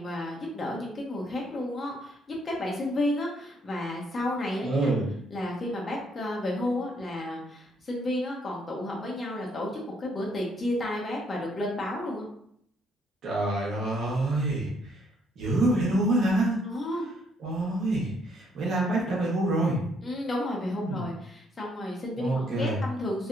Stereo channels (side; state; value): both; normal; correlation 0.69